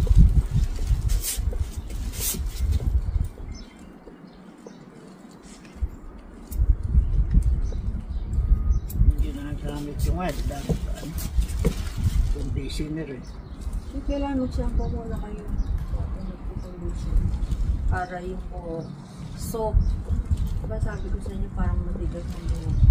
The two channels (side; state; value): both; identical; correlation 1.00